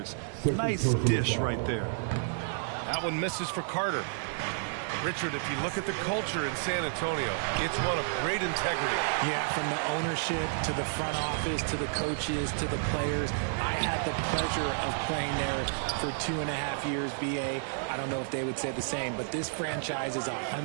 Nice dish right there. That one misses for Carter. Richard, if you look at the culture in San Antonio, it's one of great integrity. Yeah, from the ownership to the front office to the coaches to the players. I had the pleasure of playing there for 2.5 years, B.A. I don't know if they would say the same, but this franchise is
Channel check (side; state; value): left; silent; 57 dB below the other